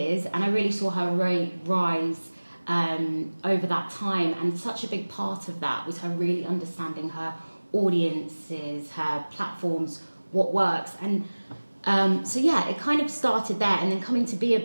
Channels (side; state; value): both; inverted; correlation -1.00